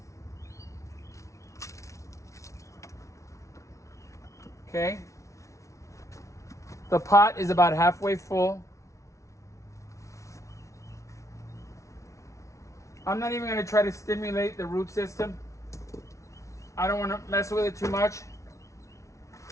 Okay. The pot is about halfway full. I'm not even gonna try to stimulate the root system. I don't want to mess with it too much.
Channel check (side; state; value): right; late; 0.14 ms